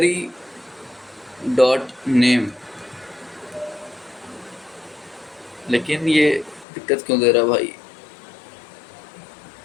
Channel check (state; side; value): drops out; right; at 6.7 s